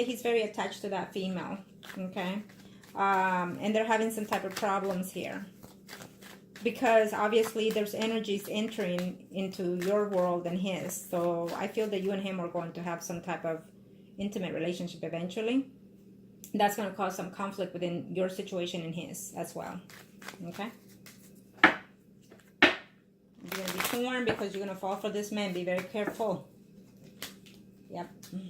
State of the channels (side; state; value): both; identical; correlation 1.00